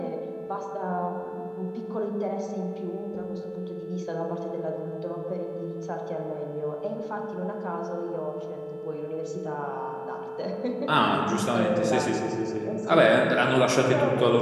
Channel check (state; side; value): identical; both; correlation 1.00